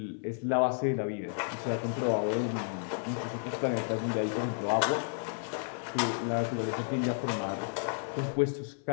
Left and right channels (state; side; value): silent; right; 56 dB below the other